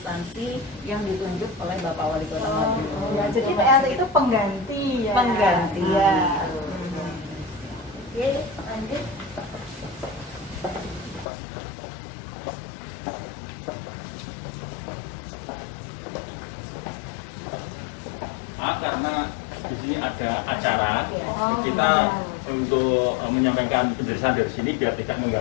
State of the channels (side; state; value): right; drops out; at 11.2 s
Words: yang ditunjuk oleh Bapak Wali Kota Madiun. Ya, jadi PLT itu pengganti ya. Pengganti. Ya. Oke, lanjut. Karena di sini ada acara, kita untuk menyampaikan penjelasan dari sini biar tidak